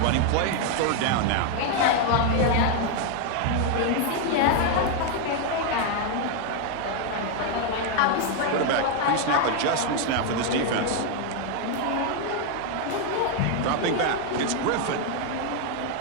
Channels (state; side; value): different; both; correlation 0.01